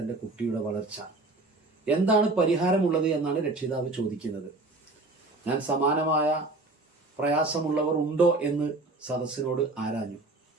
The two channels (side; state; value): left; quieter; 3.2 dB